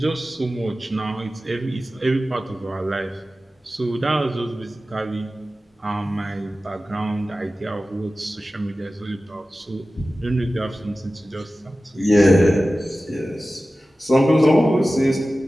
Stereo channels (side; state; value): both; normal; correlation 0.95